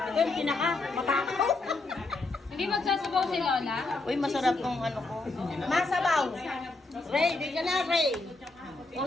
yung pinaka-matakaw. Hindi magsasabaw si Lola? Uy, masarap tong ano ko. Masabaw. Ray, di ka na, Ray. O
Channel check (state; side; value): quieter; right; 3.3 dB